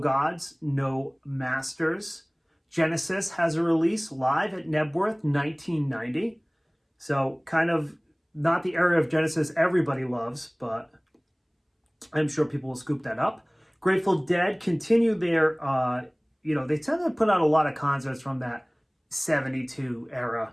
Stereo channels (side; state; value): both; identical; correlation 1.00